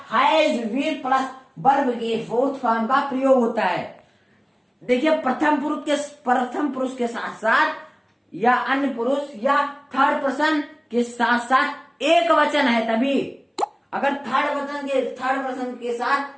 हैज बीन प्लस वर्ब के 4th फॉर्म का प्रयोग होता है। देखिए प्रथम पुरुष के साथ साथ या अन्य पुरुष या थर्ड पर्सन के साथ साथ एक वचन है, तभी अगर थर्ड पर्सन के साथ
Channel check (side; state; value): both; identical; correlation 1.00